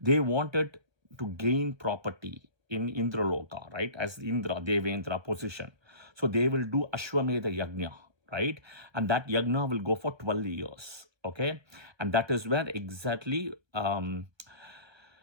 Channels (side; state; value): left; late; 1.3 ms